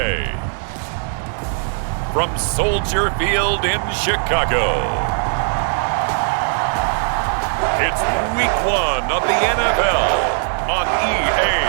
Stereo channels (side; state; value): left; silent; digital silence